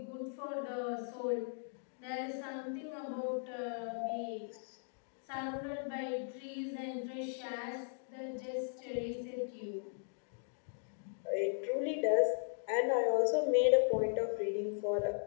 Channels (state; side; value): silent; right; digital silence